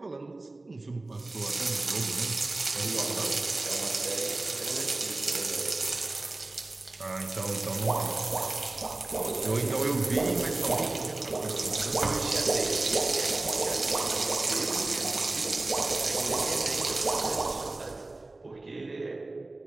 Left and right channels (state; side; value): quieter; left; 3.0 dB